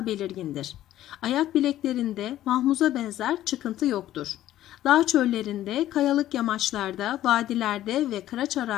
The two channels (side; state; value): right; quieter; 13.4 dB